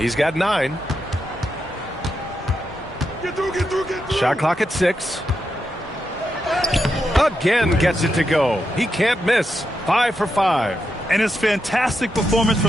got 9. Get through. Shot clock at 6. Again gets it to go. He can't miss. 5 for 5. And his fantastic performance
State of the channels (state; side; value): normal; both; correlation 0.85